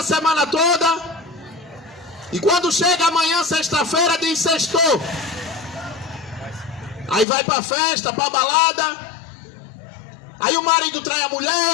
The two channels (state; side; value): drops out; right; at 7.2 s